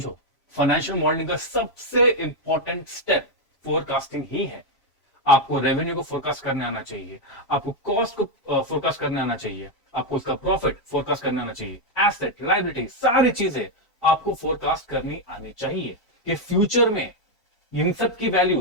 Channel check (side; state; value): right; late; 3.0 ms